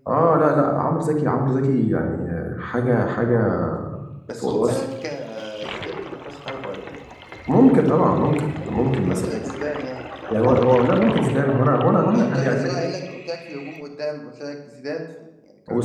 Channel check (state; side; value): identical; both; correlation 1.00